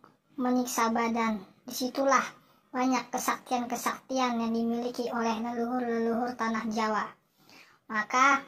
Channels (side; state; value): both; identical; correlation 1.00